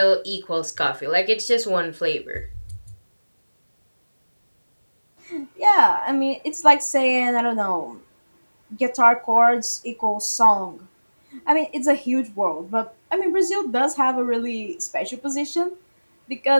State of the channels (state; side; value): inverted; both; correlation -1.00